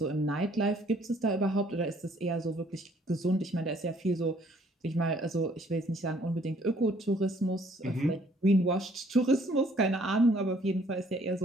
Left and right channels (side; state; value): both; normal; correlation 0.62